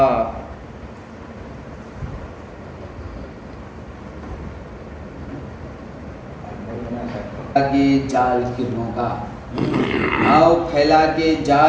کے جال کرنوں کا آؤ پھیلا کے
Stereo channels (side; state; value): both; identical; correlation 1.00